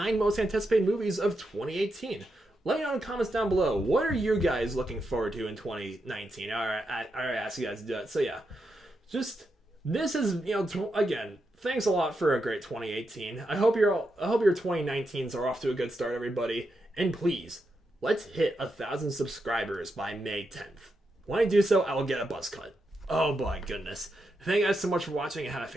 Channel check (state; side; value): normal; both; correlation 0.85